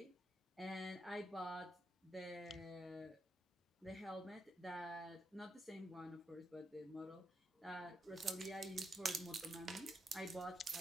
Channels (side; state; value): both; normal; correlation 0.82